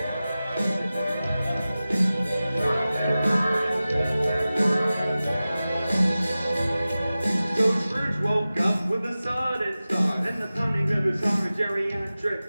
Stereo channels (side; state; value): both; inverted; correlation -0.96